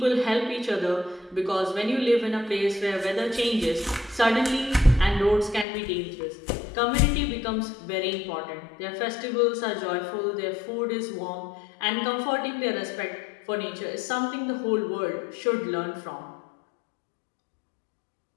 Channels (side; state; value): right; drops out; at 5.7 s